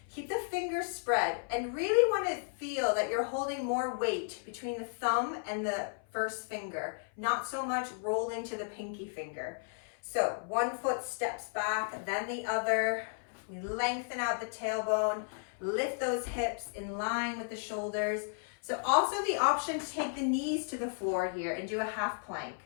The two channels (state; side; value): silent; right; 55 dB below the other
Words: keep the fingers spread, and really want to feel that you're holding more weight between the thumb and the first finger, not so much rolling to the pinky finger. So one foot steps back, then the other. We lengthen out the tailbone, lift those hips in line with the shoulders. So also the option to take the knees to the floor here and do a half plank.